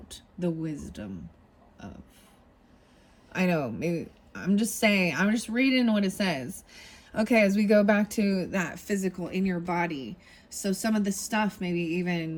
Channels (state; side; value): identical; both; correlation 1.00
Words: the wisdom of. I know, maybe I'm just reading what it says. Okay, as we go back to that physical in your body. So some of the stuff maybe